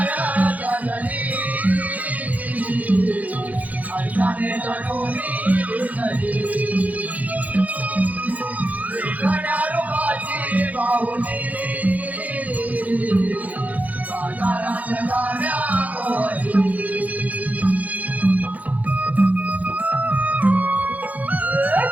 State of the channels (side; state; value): left; late; 0.076 ms